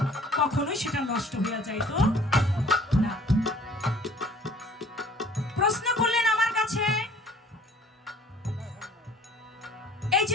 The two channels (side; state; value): both; normal; correlation 0.53